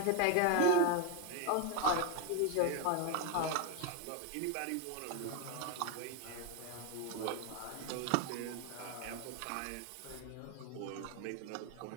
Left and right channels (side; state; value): both; different; correlation 0.01